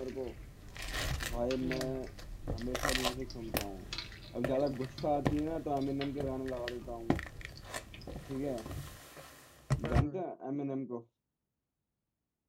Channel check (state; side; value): identical; both; correlation 1.00